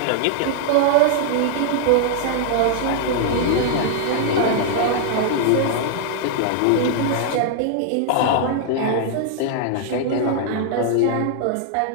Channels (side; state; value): both; different; correlation -0.01